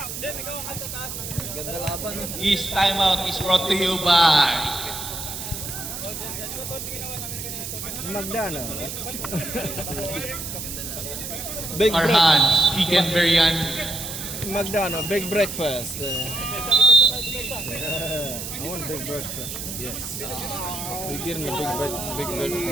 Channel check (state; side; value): noise; right; hiss, 7 dB below the sound